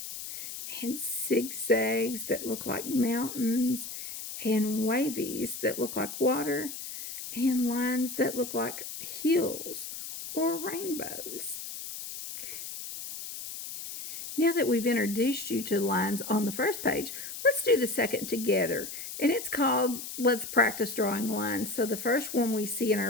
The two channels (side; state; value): left; noise; hiss, 9 dB below the sound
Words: And zigzags that look like mountains, and wavies that look like water, and lines that look like hills or rainbows. Now that we've introduced you to lines on the first page, let's do the second together. And it's called Let's Practice Drawing Lines. So the first one we see in